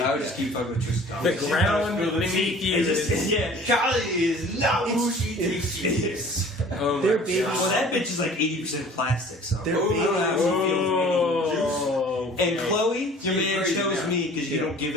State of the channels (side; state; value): both; normal; correlation 0.48